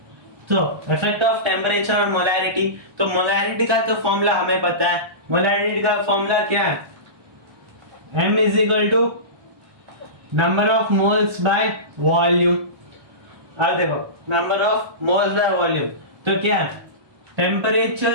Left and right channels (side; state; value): left; late; 1.2 ms